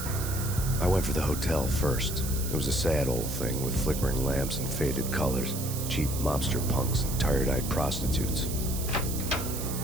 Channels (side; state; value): right; noise; hiss, 7 dB below the sound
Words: I went for the hotel first. It was a sad old thing with flickering lamps and faded colors, cheap mobster punks and tired-eyed prostitutes.